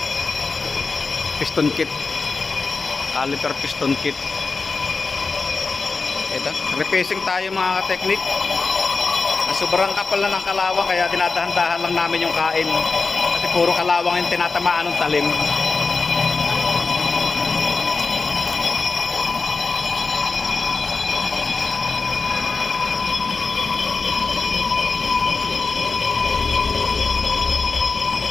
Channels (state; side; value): quieter; right; 4.3 dB